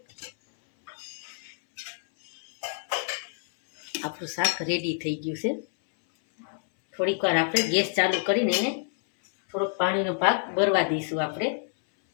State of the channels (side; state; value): right; silent; 60 dB below the other